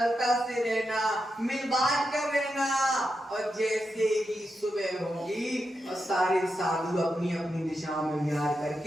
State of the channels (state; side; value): normal; both; correlation 0.87